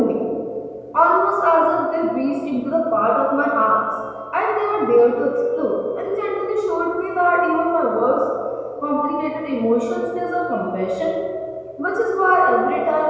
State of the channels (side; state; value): both; identical; correlation 1.00